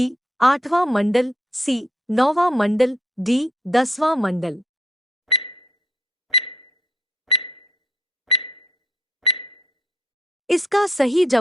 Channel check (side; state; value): both; normal; correlation 0.71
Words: आठवां मंडल, सी नौवां मंडल, डी 10वां मंडल। इसका सही